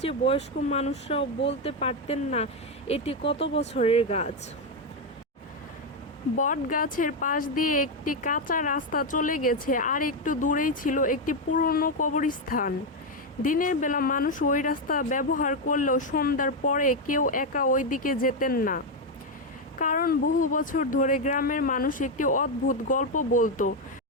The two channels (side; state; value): both; normal; correlation 0.05